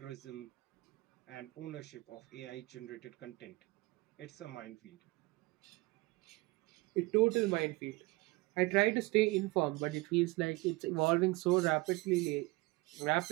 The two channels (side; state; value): left; quieter; 22.1 dB